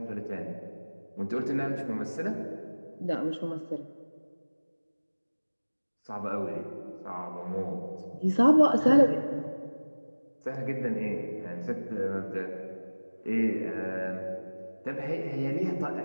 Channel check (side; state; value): both; inverted; correlation -1.00